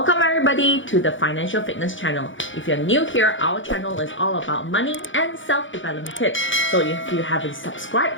everybody to the Financial Fitness channel. If you're new here, our channel is all about money and self-development tips. So if you haven't subscribed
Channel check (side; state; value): right; late; 0.56 ms